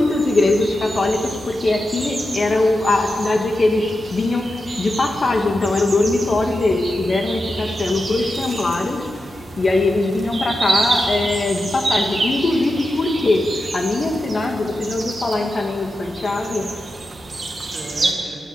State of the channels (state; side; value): normal; both; correlation 0.90